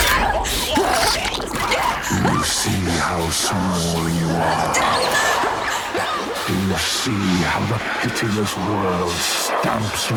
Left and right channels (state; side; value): identical; both; correlation 1.00